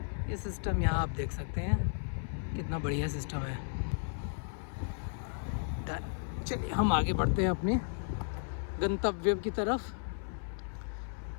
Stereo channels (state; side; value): silent; right; 55 dB below the other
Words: ये सिस्टम यहाँ आप देख सकते हैं कितना बढ़िया सिस्टम है। चलिए हम आगे बढ़ते हैं अपने गंतव्य की तरफ।